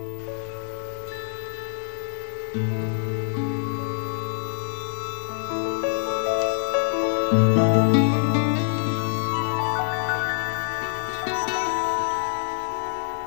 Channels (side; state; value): right; silent; digital silence